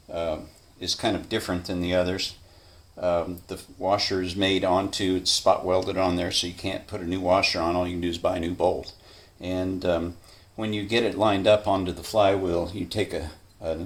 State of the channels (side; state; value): both; identical; correlation 1.00